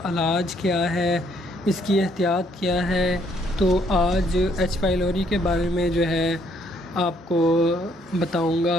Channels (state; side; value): normal; both; correlation 0.68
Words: इलाज क्या है, इसकी एहतियात क्या है। तो आज एच पाइलोरी के बारे में जो है आपको बताऊंगा,